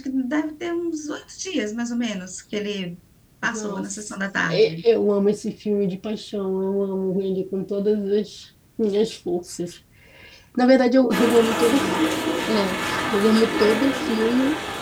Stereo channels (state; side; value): identical; both; correlation 1.00